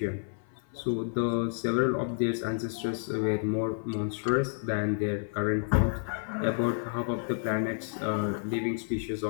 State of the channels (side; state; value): right; silent; 55 dB below the other